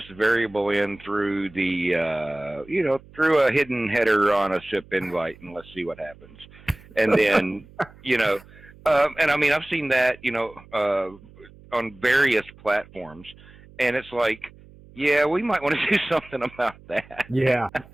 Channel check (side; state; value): right; noise; hum, 23 dB below the sound